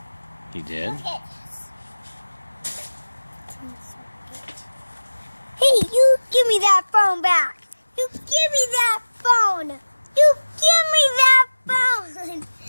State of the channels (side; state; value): both; inverted; correlation -1.00